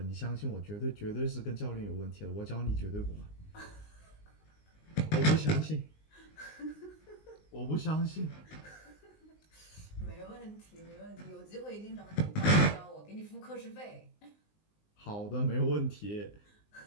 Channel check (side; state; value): right; late; 19 ms